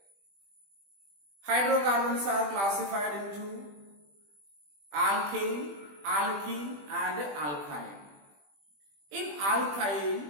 Hydrocarbons are classified into alkane, alkene and alkyne. In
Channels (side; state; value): left; late; 20 ms